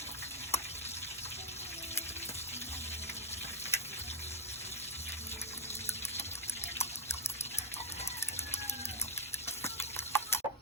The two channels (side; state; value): both; normal; correlation 0.02